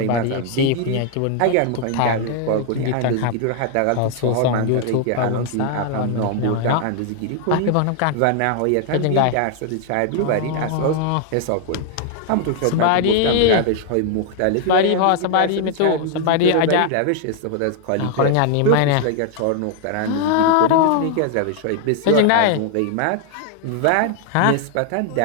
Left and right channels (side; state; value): both; different; correlation 0.00